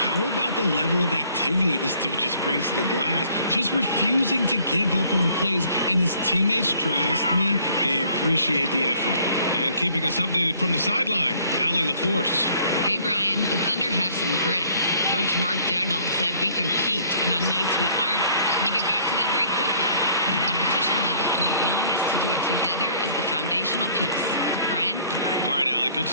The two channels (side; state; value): both; inverted; correlation -0.58